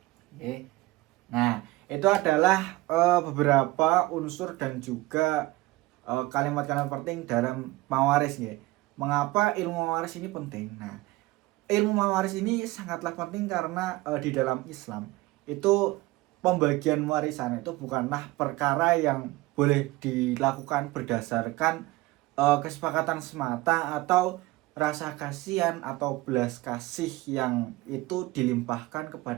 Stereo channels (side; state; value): left; quieter; 19.7 dB